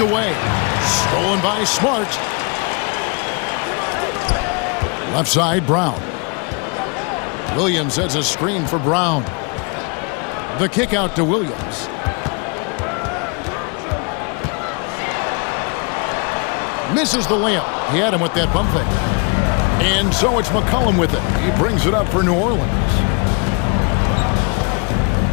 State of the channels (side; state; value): right; quieter; 33.9 dB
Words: Stolen by Smart. Left side, Brown. Williams sets a screen for Brown. The kick out to Williams. Misses the layup. He had him with that pump fake. And so it's McCollum with it. He brings it up for New Orleans.